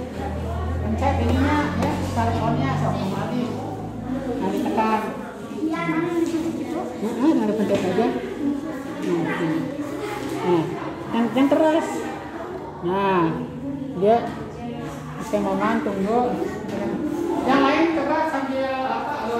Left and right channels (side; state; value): both; identical; correlation 1.00